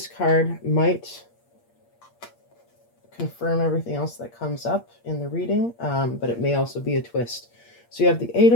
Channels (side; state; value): right; late; 8.6 ms